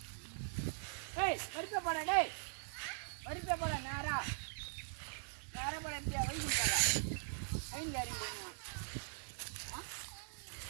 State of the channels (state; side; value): silent; left; 50 dB below the other